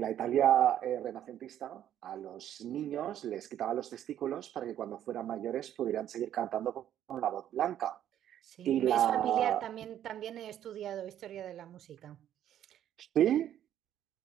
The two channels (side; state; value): left; quieter; 11.0 dB